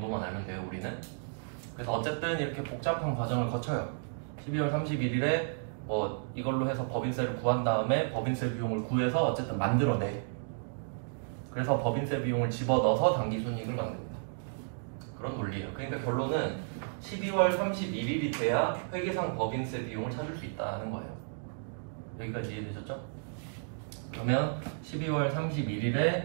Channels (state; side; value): silent; left; digital silence